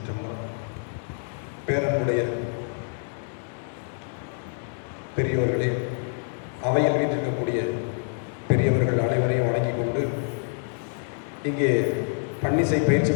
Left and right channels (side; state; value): right; silent; 61 dB below the other